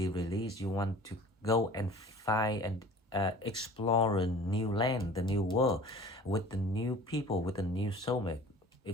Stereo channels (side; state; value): both; normal; correlation 0.44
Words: released. You want to go and find and explore a new land, the new world, with the new people, with the new soulmate.